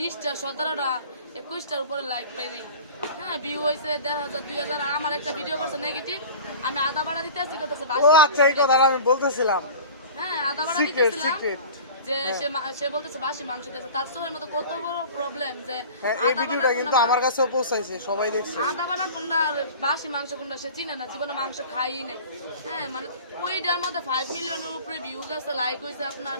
17টা 21টার উপরে লাইক পাই নাই। হ্যাঁ, ভিউ হয়েছে 1,500 2,000। আর আমার একটা ভিডিও করছে নেগেটিভ, আমি আদা বাড়া দিতে আসছি, করতেছে ও আচ্ছা, এই কথাটা আমি বলতেছিলাম। হ্যাঁ, আদা বাড়া সিক্রেট দিতেছিলাম সিক্রেট। যে সে বলতেছে বাসি মাংস দিতেছে। তার সময়ের মতো কত বড় প্রবলেম যে হ্যাঁ, এই ভিডিওটা কিন্তু আমার কাছেও পৌঁছাইছে, সবাই দেখছে। আদা বাটা কোনটা আর বাসি মাংস কোনটা সে চিনে না, জীবনে মাংস খাই নাই। হ্যাঁ, মানে ওইটার মধ্যে 5 মিলিয়নের উপরে ভিউ গেছে, লাইক হয়েছে আপনার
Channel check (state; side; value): inverted; both; correlation -0.39